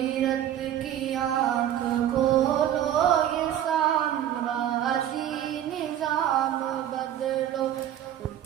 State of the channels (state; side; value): quieter; left; 11.1 dB